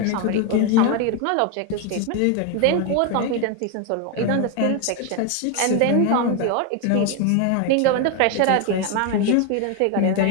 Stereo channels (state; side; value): different; both; correlation 0.01